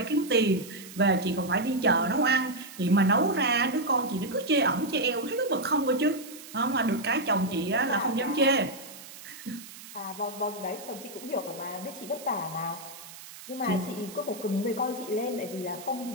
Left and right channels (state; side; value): noise; right; hiss, 16 dB below the sound